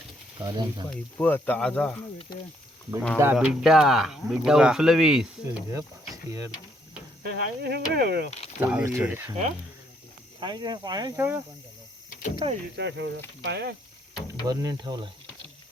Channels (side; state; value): both; normal; correlation 0.70